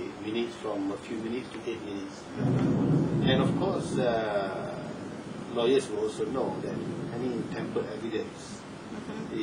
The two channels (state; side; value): identical; both; correlation 1.00